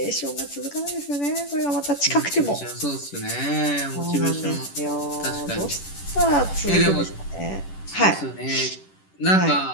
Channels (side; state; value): right; late; 10 ms